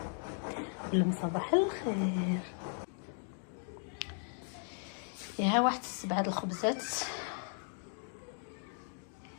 قولهم صباح الخير. يا واحد 7 الخبزات.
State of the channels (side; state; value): right; silent; 53 dB below the other